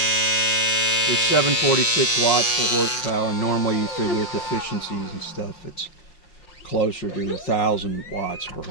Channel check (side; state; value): right; late; 5.6 ms